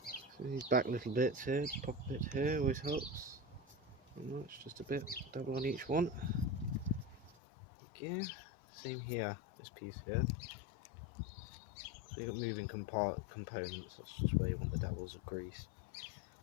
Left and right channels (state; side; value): drops out; right; at 7.4 s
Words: So these back little bits here, pop a bit here, always helps. Not much, just a bit, double on each one. Again, same here, this piece here. So you've got moving components, that's just where you want the dabbles of grease.